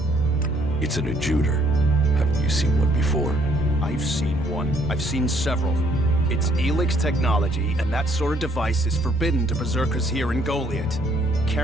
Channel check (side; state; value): both; normal; correlation 0.66